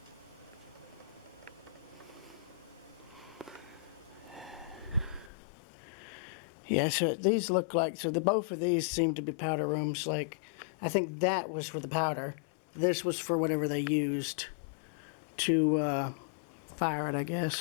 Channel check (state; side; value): drops out; right; at 5.3 s